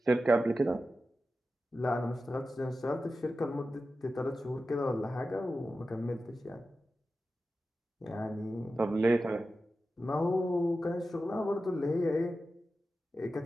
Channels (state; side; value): normal; both; correlation 0.92